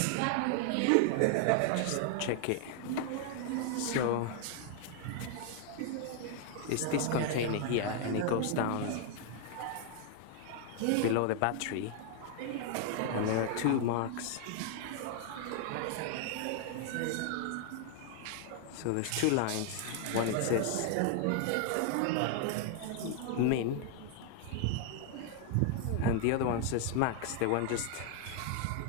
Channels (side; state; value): both; different; correlation 0.00